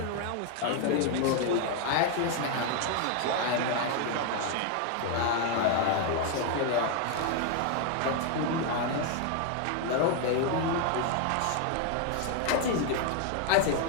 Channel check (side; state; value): both; different; correlation 0.01